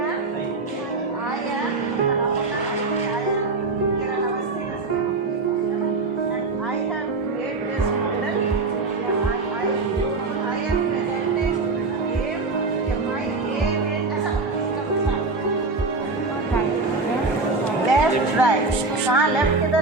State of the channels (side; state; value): left; quieter; 3.7 dB